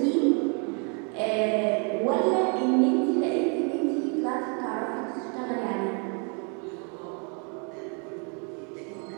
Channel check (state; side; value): quieter; left; 36.5 dB